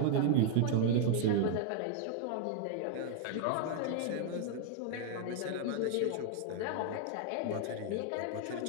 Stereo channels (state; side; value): different; both; correlation 0.00